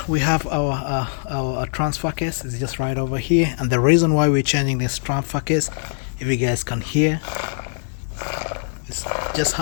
we have our transfer case is just right over here, and the reason why we're changing this transfer case, if you guys can hear, it's just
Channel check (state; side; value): silent; right; 64 dB below the other